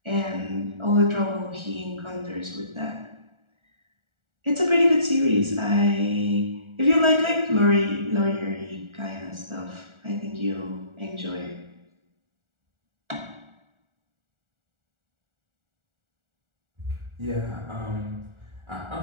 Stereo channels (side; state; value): left; late; 1.4 ms